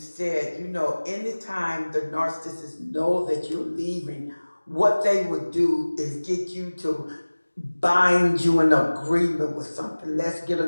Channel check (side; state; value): both; inverted; correlation -1.00